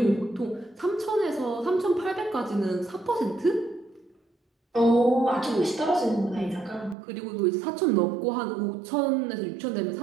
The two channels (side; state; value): left; drops out; at 7.0 s